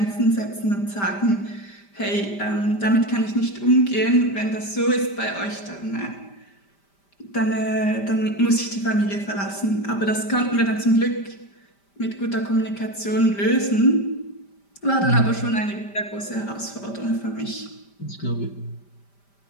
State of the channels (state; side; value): late; right; 5.1 ms